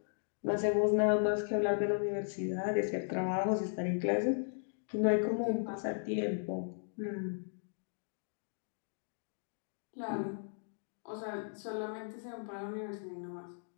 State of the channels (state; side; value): silent; right; digital silence